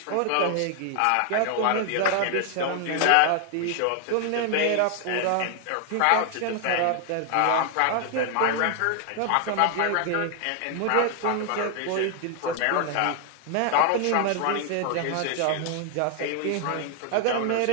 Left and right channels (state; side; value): different; both; correlation 0.00